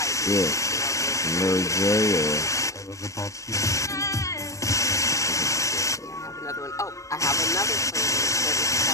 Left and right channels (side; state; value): right; late; 0.15 ms